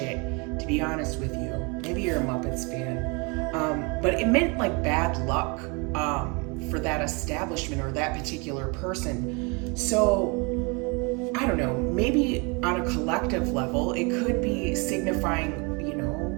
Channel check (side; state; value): left; quieter; 30.5 dB